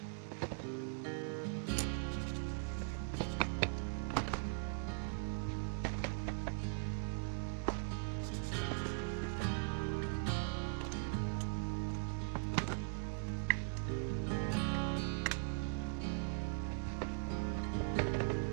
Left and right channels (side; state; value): left; silent; digital silence